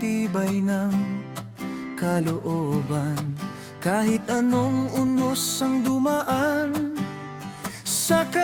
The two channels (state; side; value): identical; both; correlation 1.00